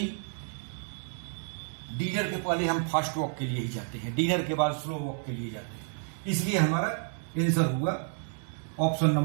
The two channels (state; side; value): silent; left; 58 dB below the other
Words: डिनर के पहले हम फास्ट वॉक के लिए ही जाते हैं, डिनर के बाद स्लो वॉक के लिए जाते हैं। इसलिए हमारा आंसर हुआ option